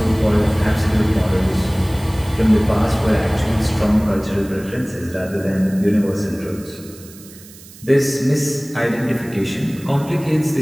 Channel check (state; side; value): noise; right; hiss, 20 dB below the sound